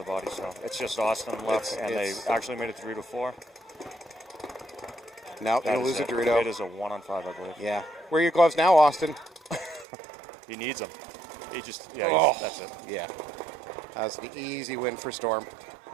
body, so it's just Austin left, they actually made it to Dorito 4. Now they'll lose a Dorito. It is a 1 on 5, I believe. Yeah. Where are your gloves now, Austin? He needs them. He just, that's it. Yeah. That's an easy win for Storm.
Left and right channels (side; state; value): left; drops out; at 9.9 s